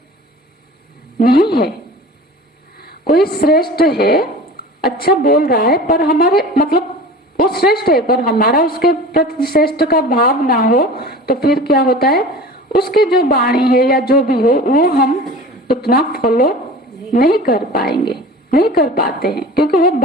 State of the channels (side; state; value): both; normal; correlation 0.38